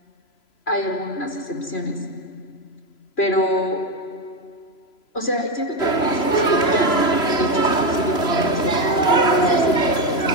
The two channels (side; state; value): right; late; 3.0 ms